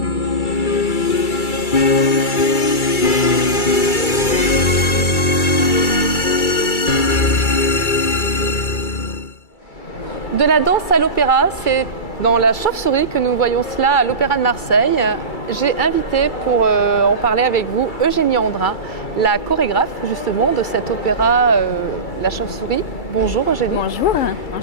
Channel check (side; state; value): right; late; 2.3 ms